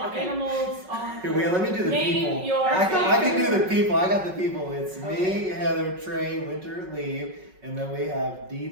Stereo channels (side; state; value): left; late; 5.4 ms